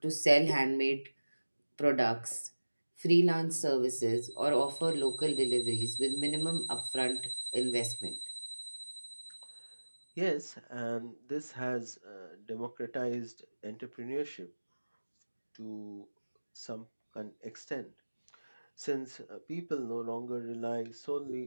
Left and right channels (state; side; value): inverted; both; correlation -1.00